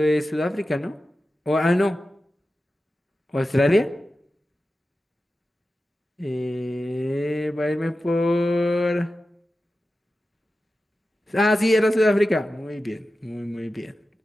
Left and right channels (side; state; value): both; normal; correlation 0.93